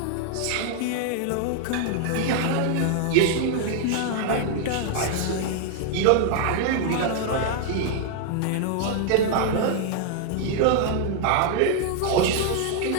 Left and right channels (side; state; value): both; different; correlation 0.00